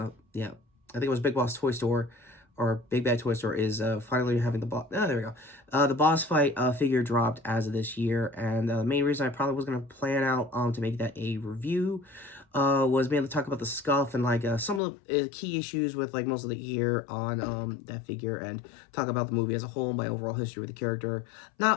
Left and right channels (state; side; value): drops out; right; at 14.8 s